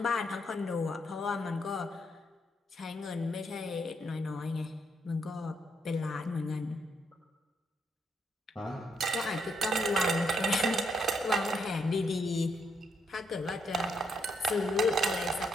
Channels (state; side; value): normal; both; correlation 0.76